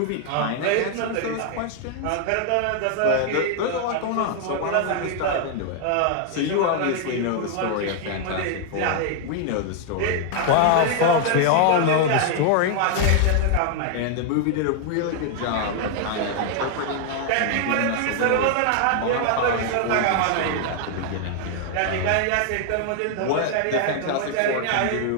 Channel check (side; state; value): both; different; correlation 0.00